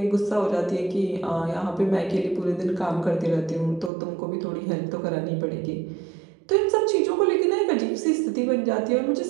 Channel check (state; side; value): drops out; left; at 3.9 s